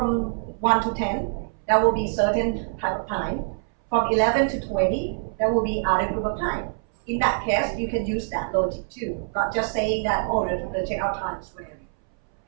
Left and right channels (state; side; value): silent; left; 61 dB below the other